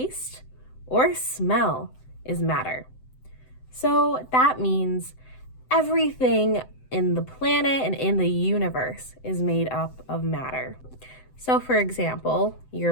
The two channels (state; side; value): late; right; 7.8 ms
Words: or smell is matter. So that means everything in the planet and in the universe is made up of matter. So for example, your